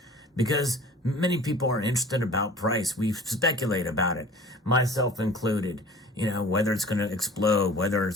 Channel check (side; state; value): both; normal; correlation 0.45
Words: because many people are interested about price. We speculate about it, myself included, whether it's going to explode, whether